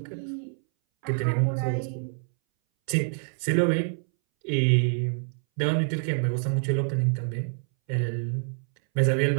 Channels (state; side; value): silent; left; 60 dB below the other